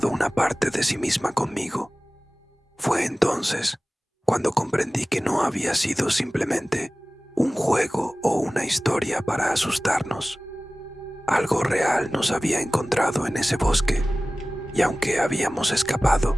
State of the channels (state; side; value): normal; both; correlation 0.98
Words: una parte de sí misma conmigo. Fue entonces cuando comprendí que no había sido simplemente un juego o una historia para asustarnos. Algo real nos había encontrado en ese bosque, y aunque habíamos escapado,